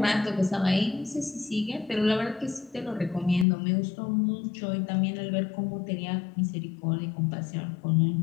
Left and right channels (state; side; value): drops out; right; at 3.5 s